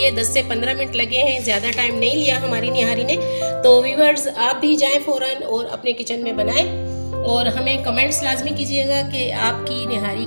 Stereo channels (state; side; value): inverted; both; correlation -1.00